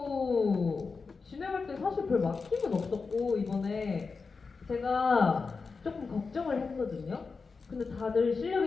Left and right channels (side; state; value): right; quieter; 4.6 dB